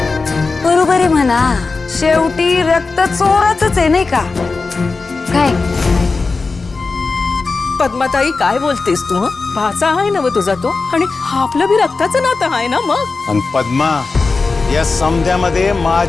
बरोबर आहे म्हणा, शेवटी रक्त चोराचंच आहे नाही का? काय पद्माताई काय बोलतेस तू? भाचा आहे ना तुझा तो, आणि आपलं बी रक्ताचं नातं आहे ना मग. आणि पद्मा, या समध्यामध्ये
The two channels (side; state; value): right; quieter; 4.1 dB